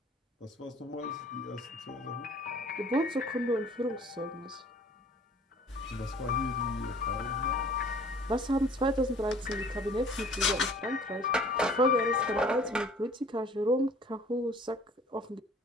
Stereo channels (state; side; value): normal; both; correlation 0.51